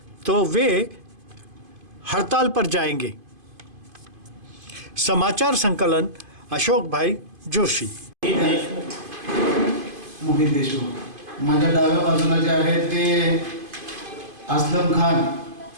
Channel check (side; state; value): left; late; 2.5 ms